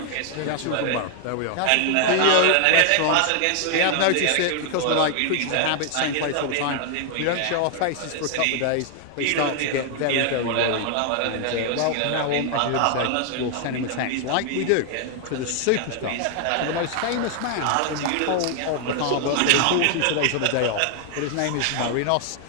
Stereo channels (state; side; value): different; both; correlation 0.00